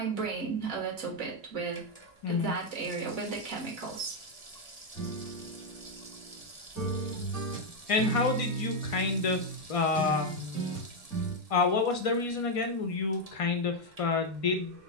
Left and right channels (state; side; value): late; left; 1.7 ms